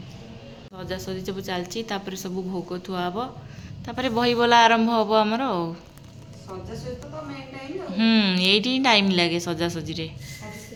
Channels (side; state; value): both; identical; correlation 1.00